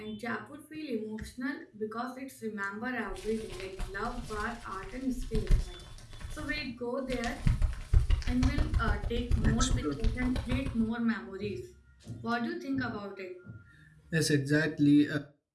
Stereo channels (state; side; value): identical; both; correlation 1.00